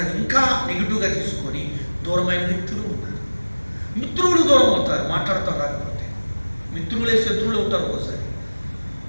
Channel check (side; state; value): both; inverted; correlation -1.00